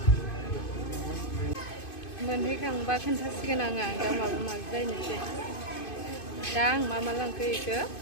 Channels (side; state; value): right; late; 2.5 ms